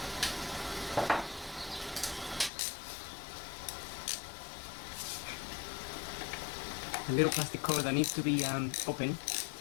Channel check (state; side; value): drops out; right; at 2.5 s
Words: A little plastic cover that needs to be open